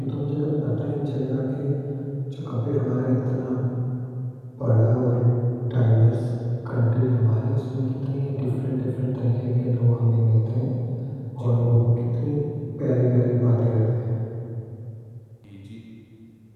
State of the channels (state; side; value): identical; both; correlation 1.00